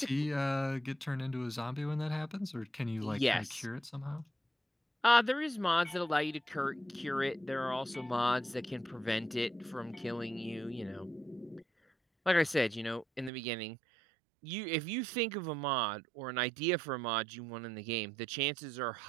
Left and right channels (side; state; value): left; drops out; at 13.3 s